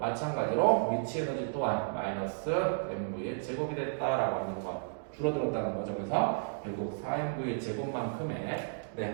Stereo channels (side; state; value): left; silent; digital silence